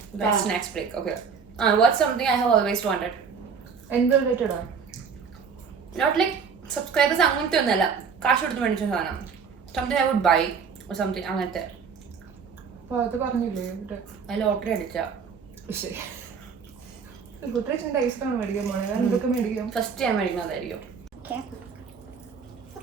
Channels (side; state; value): left; quieter; 6.0 dB